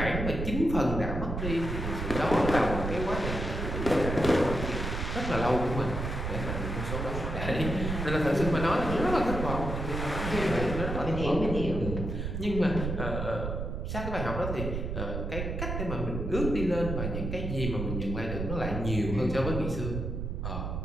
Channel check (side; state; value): right; noise; rumble, 3 dB below the sound